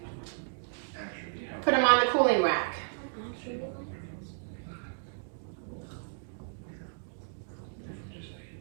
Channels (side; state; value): left; silent; digital silence